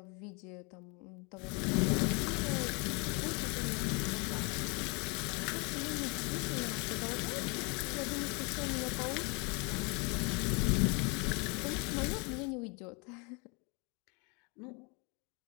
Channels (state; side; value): quieter; right; 31.8 dB